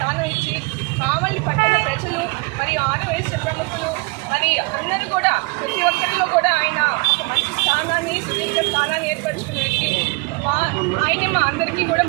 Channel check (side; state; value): left; quieter; 29.8 dB